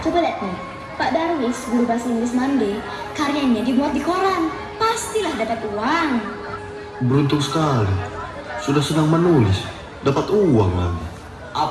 Coba lihat nih. Pak Darwis, guru bahasa Inggris Mande, karyanya dimuat di koran. Pastilah dapat uang. Beruntung sekali. Sudah senang menulis, dapat uang lagi.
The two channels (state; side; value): identical; both; correlation 1.00